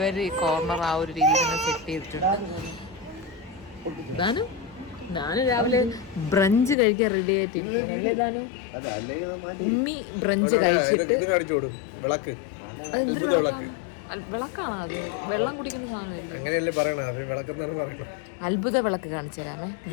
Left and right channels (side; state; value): right; drops out; at 6.8 s